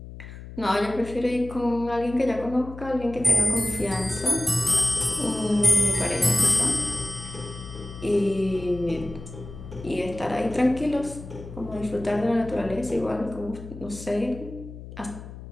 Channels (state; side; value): noise; left; hum, 13 dB below the sound